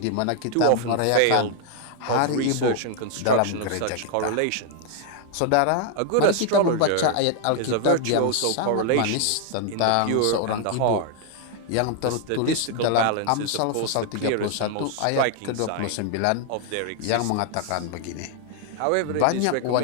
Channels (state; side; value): different; both; correlation 0.00